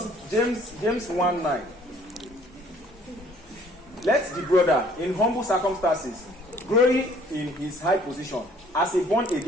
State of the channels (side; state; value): both; normal; correlation 0.58